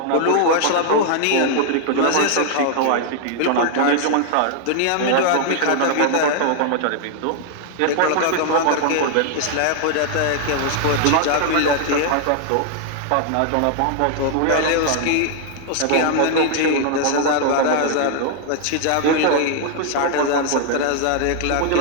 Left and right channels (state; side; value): different; both; correlation 0.00